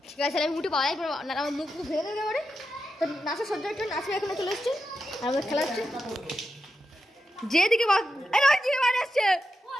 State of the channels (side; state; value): both; normal; correlation 0.88